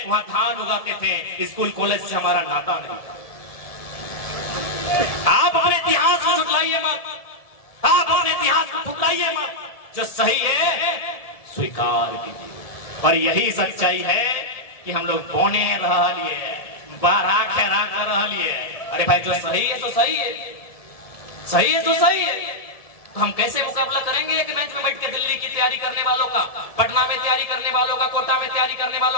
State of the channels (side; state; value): right; late; 1.7 ms